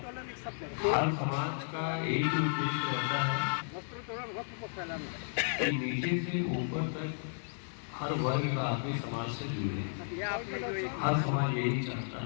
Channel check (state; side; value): silent; right; digital silence